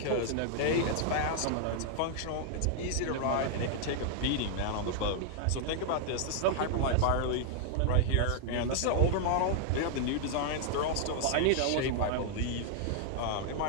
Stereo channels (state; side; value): different; both; correlation 0.00